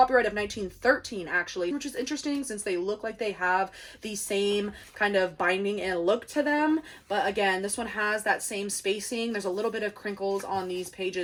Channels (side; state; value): both; identical; correlation 1.00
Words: of 1913 actually, which is interesting since they look like they have the same kind of binding and look to them. But again, this one has that same spacing. There's a little bit of crinkles on these